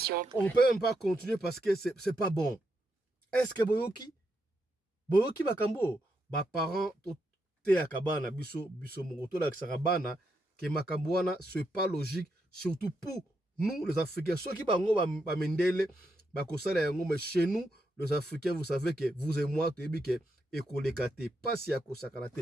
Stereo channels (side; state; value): both; normal; correlation 0.82